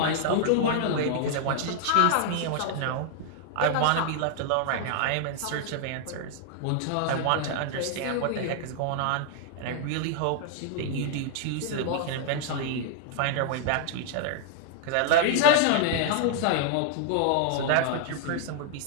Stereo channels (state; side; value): different; both; correlation -0.01